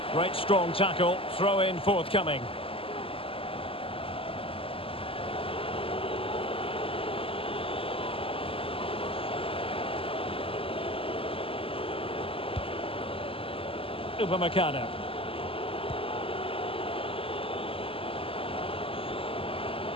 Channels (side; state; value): right; late; 0.26 ms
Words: Great strong tackle, throw in forthcoming. Upamecano.